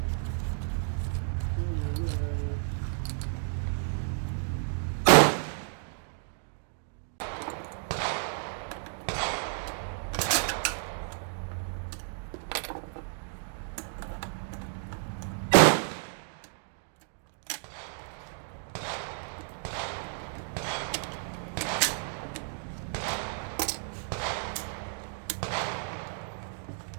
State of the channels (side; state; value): left; silent; digital silence